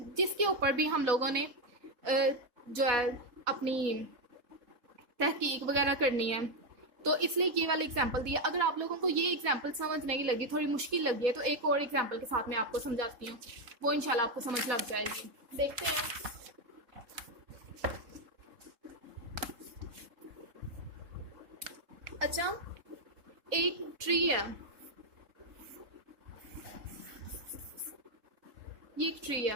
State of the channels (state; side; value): late; left; 3.7 ms